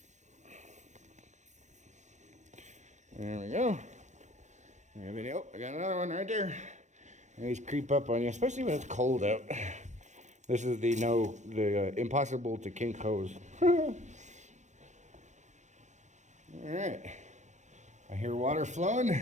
There we go. Oh, I got another one right there. These creep up on you, especially when it's cold out. This is the impossible to kink hose. All right, I hear water flowing.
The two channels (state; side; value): late; left; 0.34 ms